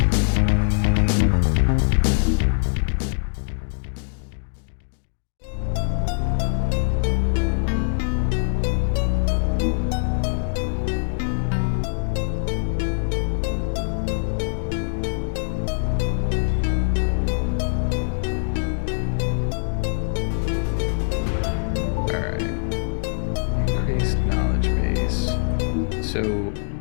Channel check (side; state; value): right; silent; digital silence